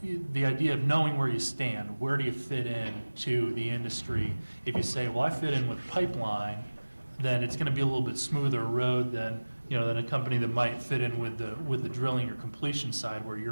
the idea of knowing where you stand, where do you fit in to the industry? If you say, well, I fit in with pipeline, then it's going to be a little bit smoother road than a company that might fit in with the drilling or completion side, where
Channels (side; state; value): both; inverted; correlation -1.00